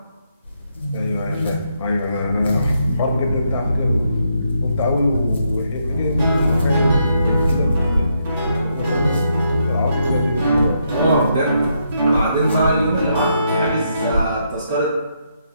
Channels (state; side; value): inverted; both; correlation -0.78